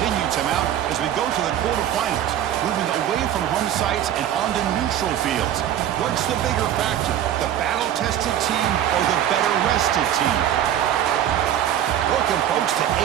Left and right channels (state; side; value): quieter; left; 10.9 dB